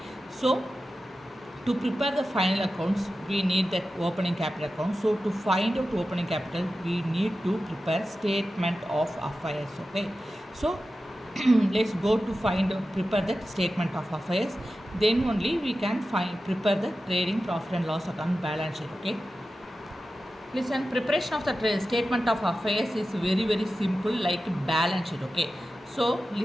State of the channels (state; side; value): normal; both; correlation 0.93